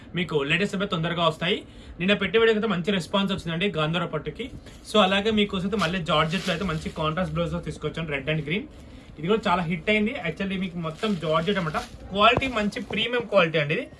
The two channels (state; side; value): identical; both; correlation 1.00